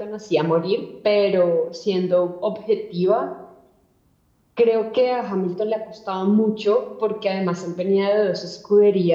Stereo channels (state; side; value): identical; both; correlation 1.00